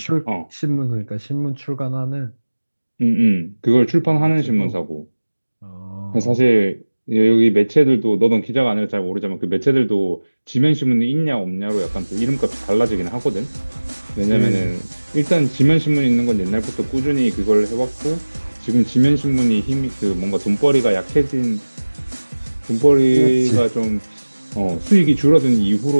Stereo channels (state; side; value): inverted; both; correlation -1.00